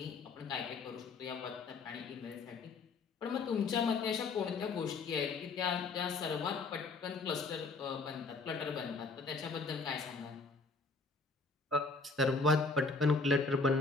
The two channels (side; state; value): right; quieter; 4.1 dB